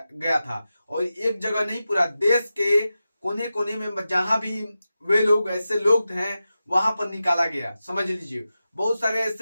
था। और एक जगह नहीं, पूरा देश के कोने कोने में जहां भी वे लोग, ऐसे लोग हैं, वहां पर निकाला गया। समझ लीजिए, बहुत सारे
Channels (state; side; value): inverted; both; correlation -0.92